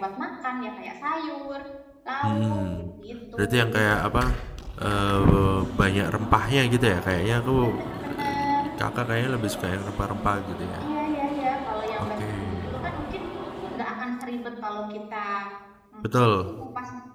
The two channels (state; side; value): identical; both; correlation 1.00